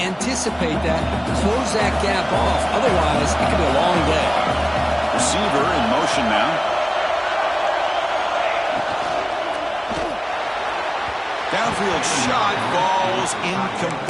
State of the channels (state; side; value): identical; both; correlation 1.00